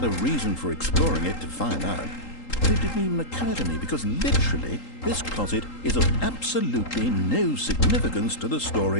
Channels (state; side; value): late; right; 3.8 ms